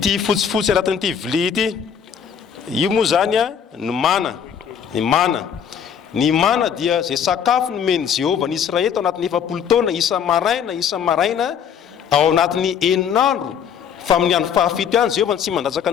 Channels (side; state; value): right; quieter; 7.9 dB